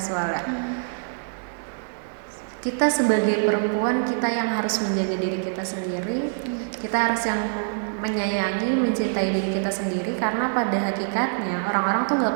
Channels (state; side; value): silent; left; digital silence